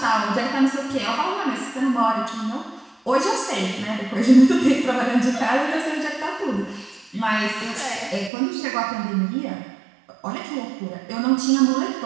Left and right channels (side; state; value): left; drops out; at 8.3 s